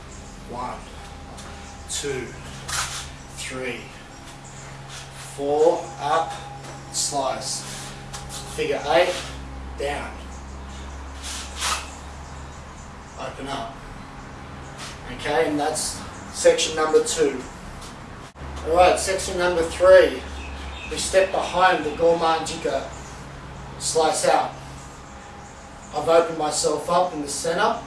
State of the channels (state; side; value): identical; both; correlation 1.00